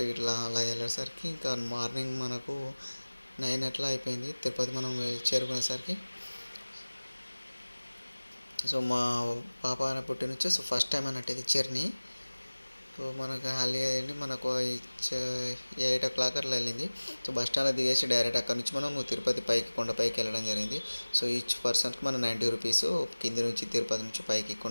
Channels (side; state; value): both; inverted; correlation -1.00